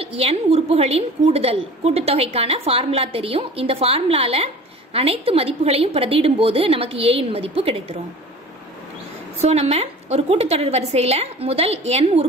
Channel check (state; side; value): normal; both; correlation 0.42